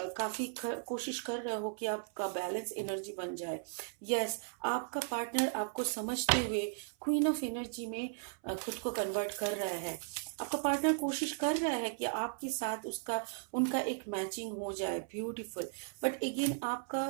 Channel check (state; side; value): silent; left; 54 dB below the other